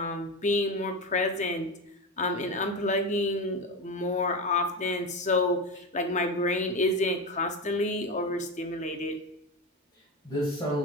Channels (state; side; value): normal; both; correlation 0.19